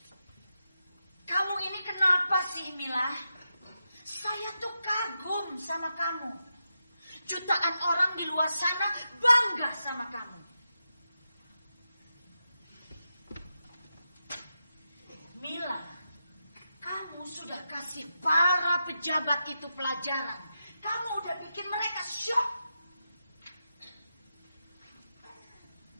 Kamu ini kenapa sih, Mila? Saya tuh kagum sama kamu. Jutaan orang di luar sana bangga sama kamu. Mila, kamu sudah kasih para pejabat itu pelajaran. Kamu udah bikin mereka syok.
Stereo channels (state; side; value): inverted; both; correlation -0.88